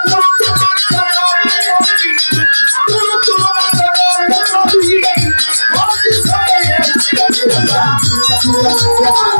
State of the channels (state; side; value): inverted; both; correlation -1.00